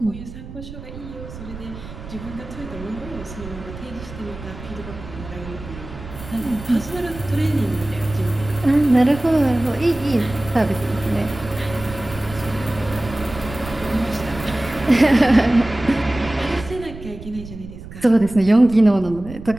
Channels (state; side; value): noise; right; rumble, 13 dB below the sound